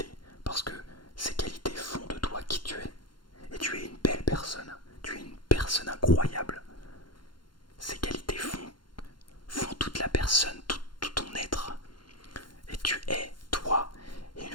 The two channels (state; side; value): late; right; 0.72 ms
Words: parce que ces qualités font de toi qui tu es. Et tu es une belle personne, tu es une personne incroyable. Ces qualités font toute la personne, tout ton être. Et tu es toi. Et une